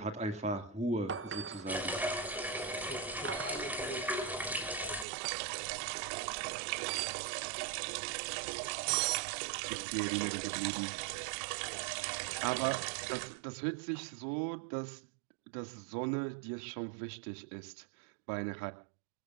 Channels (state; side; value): drops out; left; at 5.1 s